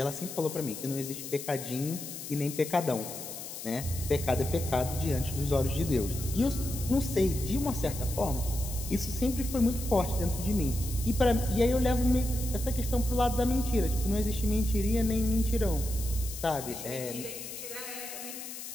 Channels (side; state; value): left; noise; hiss, 9 dB below the sound